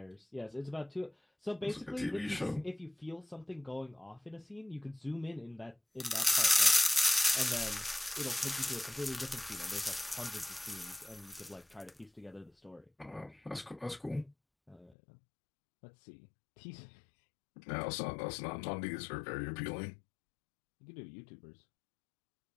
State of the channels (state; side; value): drops out; right; at 15.0 s